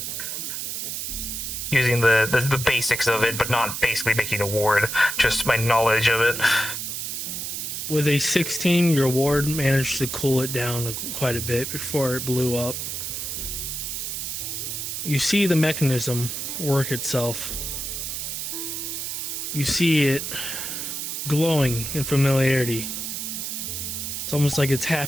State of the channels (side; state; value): right; noise; hiss, 4 dB below the sound